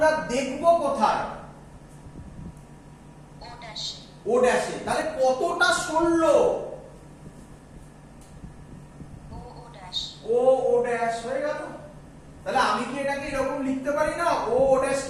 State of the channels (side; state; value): both; identical; correlation 1.00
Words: আমরা দেখব কোথায়? ও ড্যাশে। তাহলে কতটা সরলো? ও ড্যাশ হয়ে গেল। তাহলে আমি কি এটাকে এরকম লিখতে পারি না? ও